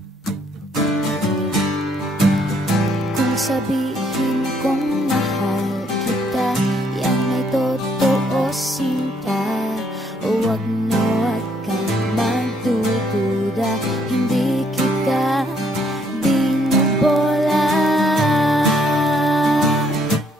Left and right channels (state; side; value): normal; both; correlation 0.68